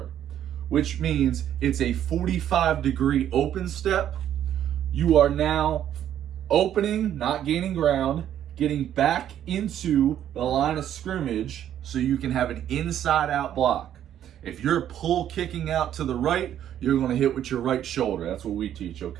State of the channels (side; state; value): left; quieter; 10.7 dB